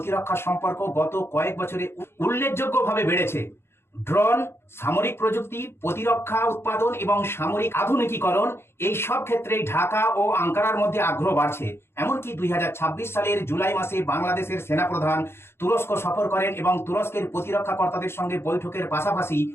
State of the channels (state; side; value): late; right; 0.12 ms